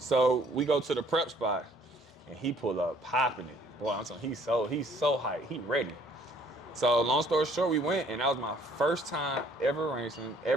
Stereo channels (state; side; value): normal; both; correlation 0.60